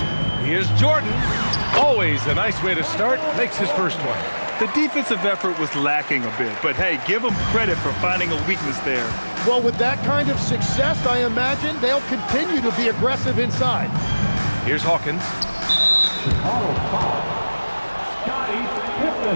Here's Jordan. Always a nice way to start. Makes his first one. The defensive effort was lacking a bit, but hey, give them credit for finding a weakness there. Well, with that kind of success, I imagine they'll continue to be aggressive inside. Here's Hawkins. Chicago foul. Scottie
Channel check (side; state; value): both; inverted; correlation -1.00